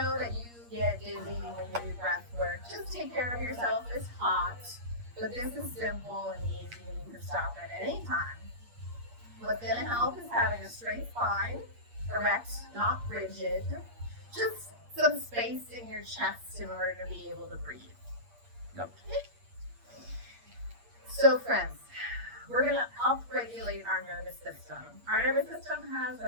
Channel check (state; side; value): late; left; 8.5 ms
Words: that you get dizzy when you do breath work, just take care of yourself. It's hot, but this is simple and easy and you can stop at any time. What's going to help is having a straight spine, erect, not rigid, just some space in your chest in order to be able to breathe. Yep. So friends, we're going to upregulate our nervous system. Our nervous system has